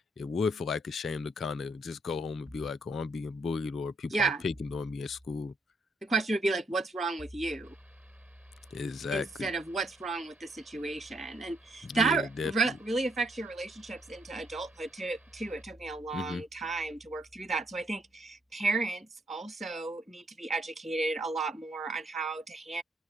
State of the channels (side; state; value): both; normal; correlation 0.73